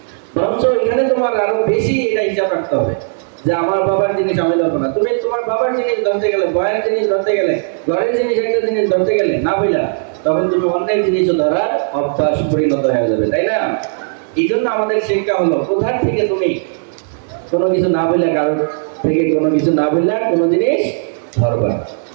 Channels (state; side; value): silent; left; 59 dB below the other